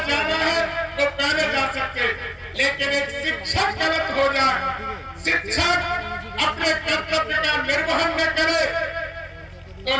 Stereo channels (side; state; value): both; identical; correlation 1.00